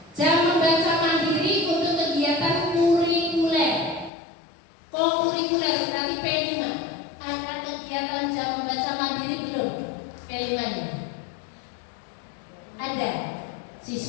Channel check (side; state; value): right; drops out; at 4.1 s